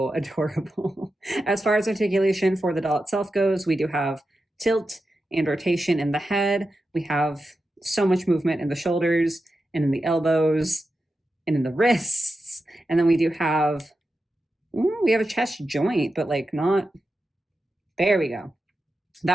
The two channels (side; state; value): both; normal; correlation 0.90